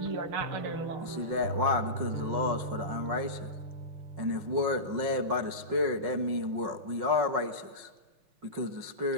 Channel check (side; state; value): left; late; 5.5 ms